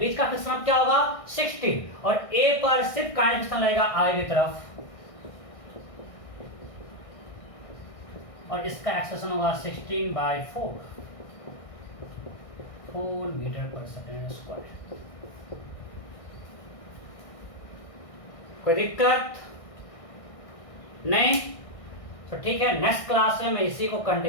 का फ्रिक्शन क्या होगा 16 और ए पर सिर्फ काइनेटिक फ्रिक्शन लगेगा आई की तरफ और इसका एक्सेलेरेशन होगा 16/4 4 मीटर पर सेकेंड स्क्वायर। कोई दिक्कत नहीं? तो ठीक है, नेक्स्ट क्लास में मैं इसी को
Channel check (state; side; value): late; right; 1.6 ms